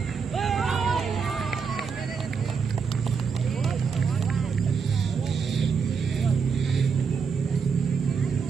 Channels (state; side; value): quieter; left; 5.8 dB